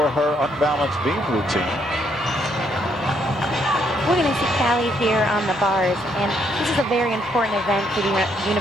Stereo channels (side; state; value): both; normal; correlation 0.72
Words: her unbalanced beam routine. we're going to see Callie here on the bars, and this is a very important event for the